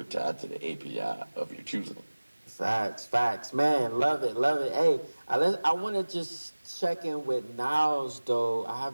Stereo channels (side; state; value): both; inverted; correlation -1.00